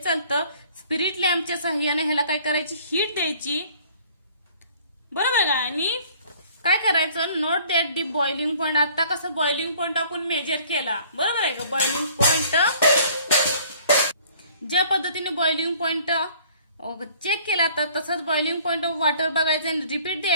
स्पिरिट लॅम्पच्या सहाय्याने ह्याला काय करायची, हीट द्यायची, बरोबर का. आणि काय करायचं, note that the boiling point. आता कसं बॉइलिंग पॉइंट आपण मेजर केला, बरोबर आहे का. बॉइलिंग पॉइंट ज्या पद्धतीने बॉइलिंग पॉइंट चेक केला तर तसंच बॉइलिंग पॉइंट ऑफ वॉटर बघायचं आणि रिपीट द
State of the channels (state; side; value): inverted; both; correlation -0.55